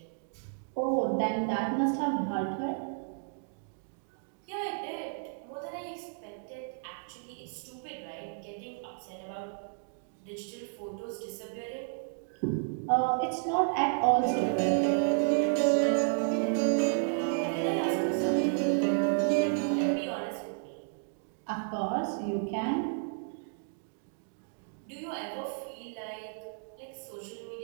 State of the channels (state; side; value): silent; left; digital silence